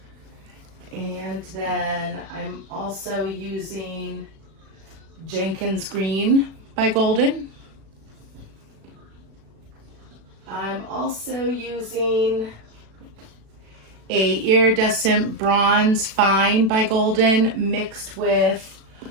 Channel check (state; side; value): late; left; 36 ms